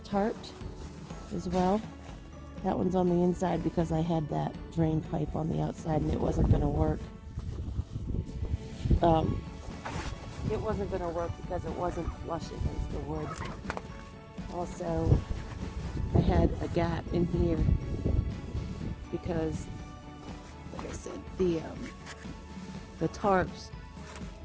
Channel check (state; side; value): identical; both; correlation 1.00